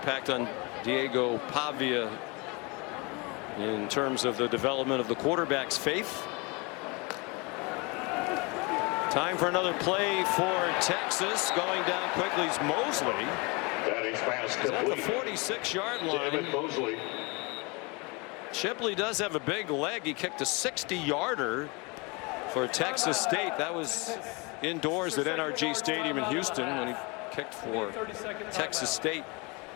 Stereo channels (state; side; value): quieter; right; 28.5 dB